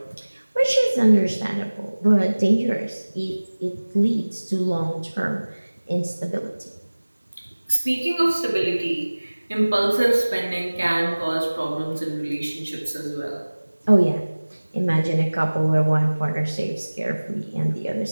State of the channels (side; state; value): both; inverted; correlation -1.00